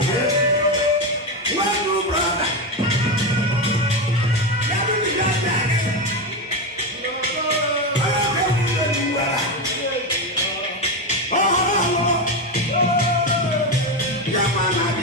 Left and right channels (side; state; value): both; normal; correlation 0.13